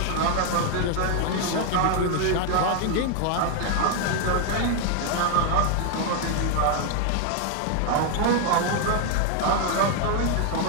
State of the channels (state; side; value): different; both; correlation 0.01